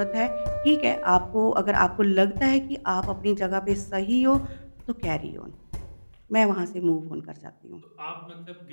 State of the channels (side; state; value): both; inverted; correlation -1.00